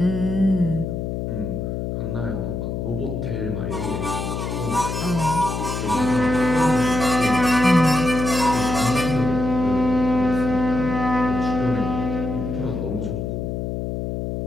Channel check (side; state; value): left; noise; hum, 3 dB below the sound